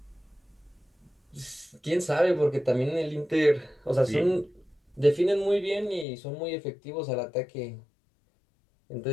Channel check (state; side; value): drops out; right; at 6.1 s